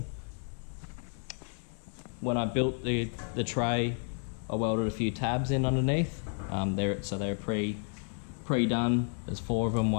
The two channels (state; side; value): silent; right; 56 dB below the other